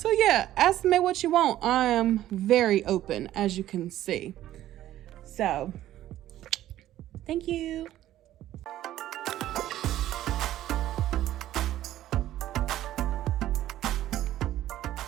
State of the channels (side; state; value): left; quieter; 13.4 dB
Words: yeah, ask me what you want. I am very open, as you can see. So, thank you.